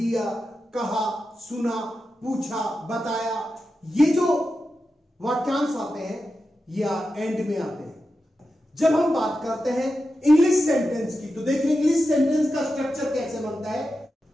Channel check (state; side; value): normal; both; correlation 0.90